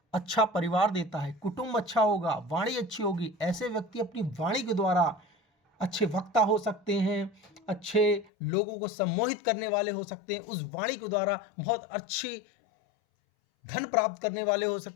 अच्छा परिवार देता है, कुटुंब अच्छा होगा, वाणी अच्छी होगी। ऐसे व्यक्ति अपनी वाणी के द्वारा अच्छे वक्ता हो सकते हैं, अच्छे लोगों को सम्मोहित करने वाले हो सकते हैं, उस वाणी के द्वारा बहुत अच्छी धन प्राप्त करने वाले हो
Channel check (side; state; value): right; drops out; at 8.3 s